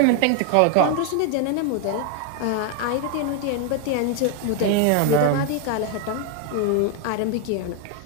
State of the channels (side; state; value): both; different; correlation 0.00